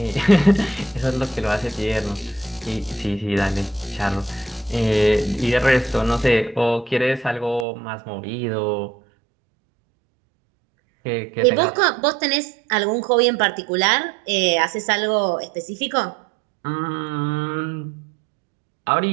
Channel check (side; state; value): left; drops out; at 7.7 s